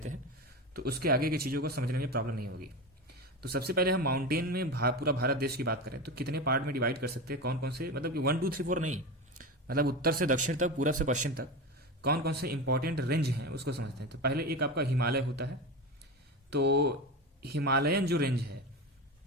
हैं तो उसके आगे की चीज़ों को समझने में प्रॉब्लम नहीं होगी। तो सबसे पहले हम माउंटेन में पूरा भारत देश की बात करें तो कितने पार्ट में डिवाइड कर सकते हैं, कौन कौन से, मतलब कि 1 2 3 4 नहीं, मतलब उत्तर से दक्षिण तक, पूरब से पश्चिम तक कौन कौन से इंपॉर्टेंट रेंज हैं उसको समझते हैं। तो पहले एक आपका हिमालय होता है। तो हिमालयन जो रेंज है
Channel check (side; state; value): both; normal; correlation 0.22